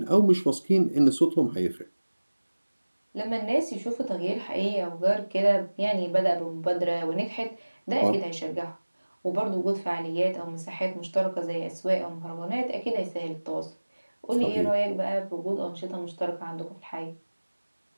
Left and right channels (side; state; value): both; inverted; correlation -1.00